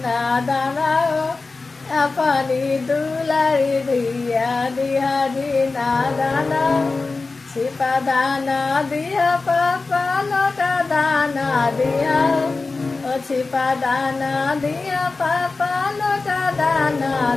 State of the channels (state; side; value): quieter; right; 3.8 dB